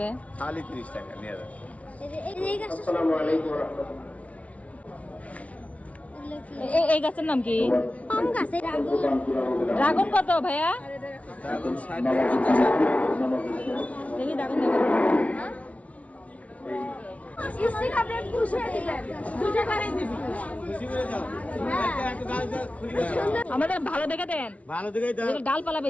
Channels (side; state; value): right; late; 0.066 ms